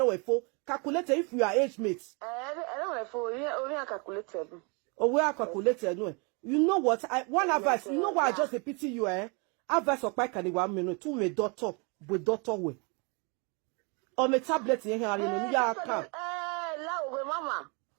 we for calculate if we are age mates. I don't know for we are calculated. Oh, we are calculated. No, you know what? One advice, you know why I just pity you, Advice of Pike and 1 minute, 2 me daughter with daughter way. Or me tablet in here, and you are come. Mama.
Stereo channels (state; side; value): quieter; left; 32.5 dB